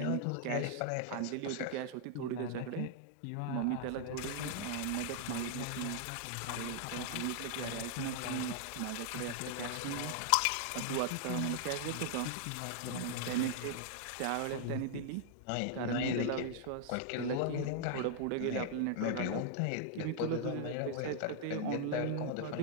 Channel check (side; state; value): both; different; correlation -0.01